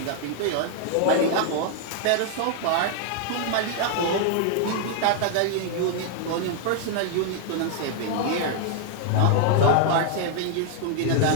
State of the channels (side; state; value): both; different; correlation 0.00